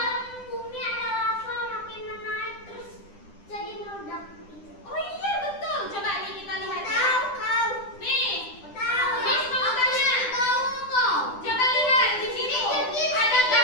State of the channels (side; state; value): right; late; 9.9 ms